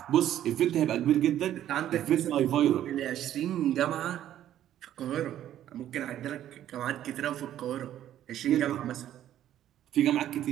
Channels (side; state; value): left; quieter; 11.7 dB